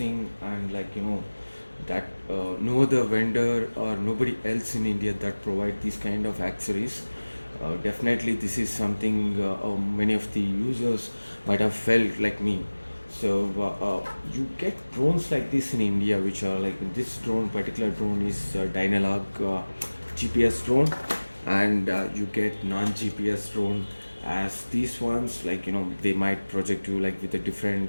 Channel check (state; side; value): inverted; both; correlation -1.00